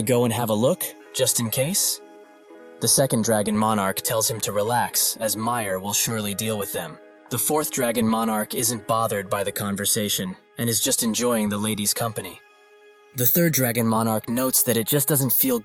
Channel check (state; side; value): identical; both; correlation 1.00